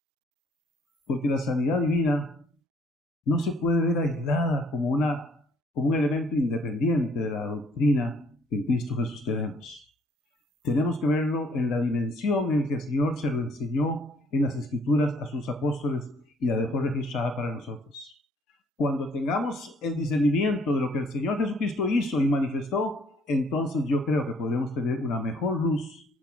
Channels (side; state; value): both; normal; correlation 0.63